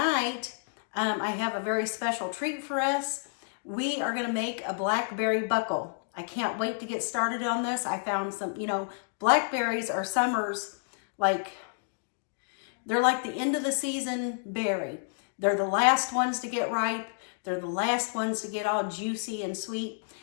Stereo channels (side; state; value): right; silent; digital silence